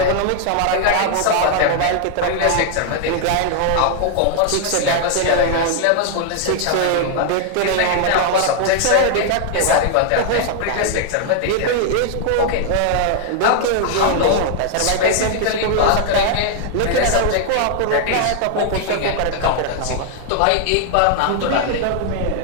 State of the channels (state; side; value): different; both; correlation 0.00